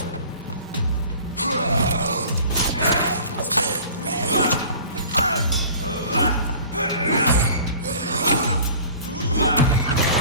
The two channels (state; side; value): inverted; both; correlation -0.45